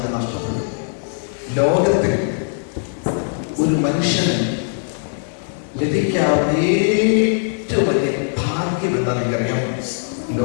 നഷ്ടപ്പെടും. ലോകത്തിൽ ഒരു മനുഷ്യന് ലഭിക്കാവുന്ന ഏറ്റവും വലിയ ഭാഗ്യം എന്താ നിങ്ങൾക്കറിയാം?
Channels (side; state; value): right; silent; digital silence